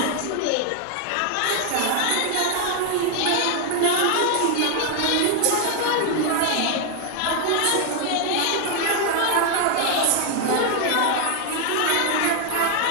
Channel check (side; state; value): both; different; correlation 0.00